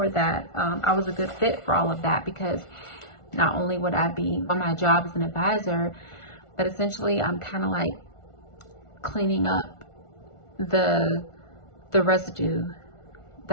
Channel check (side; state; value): right; late; 1.4 ms